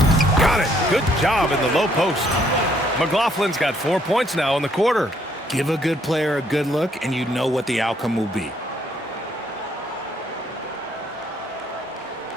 Got it. Good job in the low post. McLaughlin's got 4 points now in the quarter. Give a good player a good look, and you know what the outcome will be.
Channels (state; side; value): normal; both; correlation 0.68